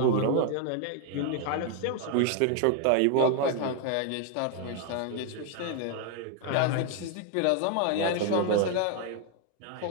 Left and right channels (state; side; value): different; both; correlation 0.01